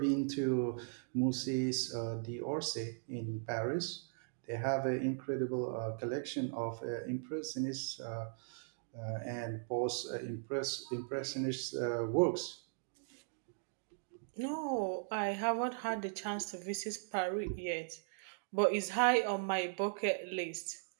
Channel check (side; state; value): left; silent; digital silence